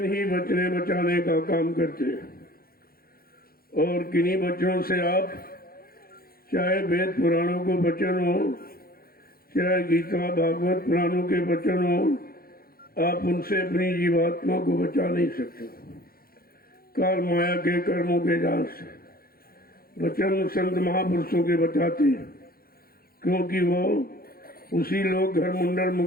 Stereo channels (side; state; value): right; late; 0.43 ms